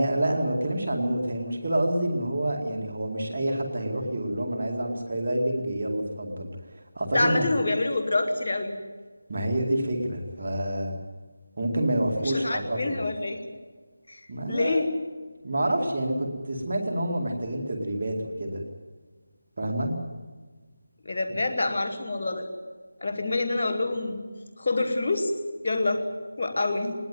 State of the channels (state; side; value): inverted; both; correlation -0.91